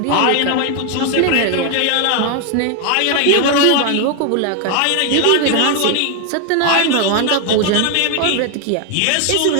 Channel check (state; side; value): different; both; correlation 0.00